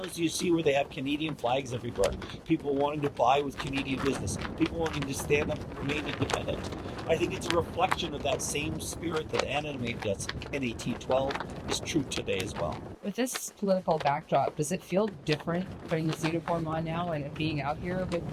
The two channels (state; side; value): identical; both; correlation 1.00